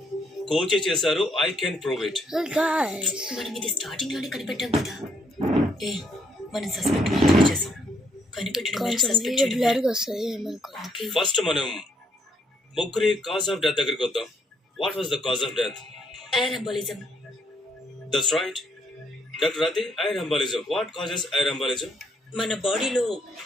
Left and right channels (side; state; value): both; normal; correlation 0.71